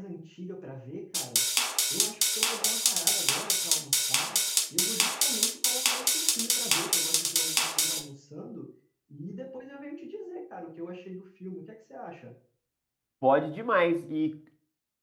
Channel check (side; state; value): both; identical; correlation 1.00